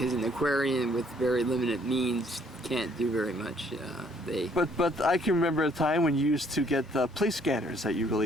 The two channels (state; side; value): normal; both; correlation 0.64